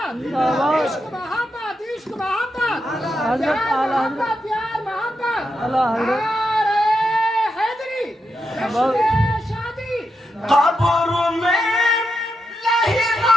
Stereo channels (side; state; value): both; normal; correlation 0.85